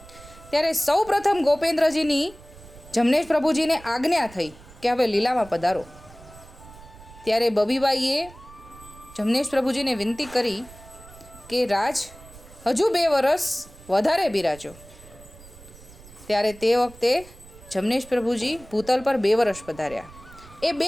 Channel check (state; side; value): noise; right; rumble, 20 dB below the sound